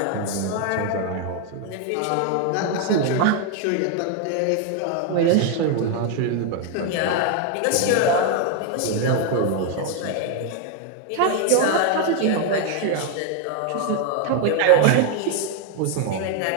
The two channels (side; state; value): both; different; correlation 0.01